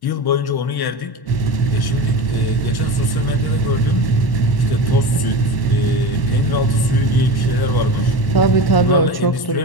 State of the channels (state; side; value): late; right; 1.1 ms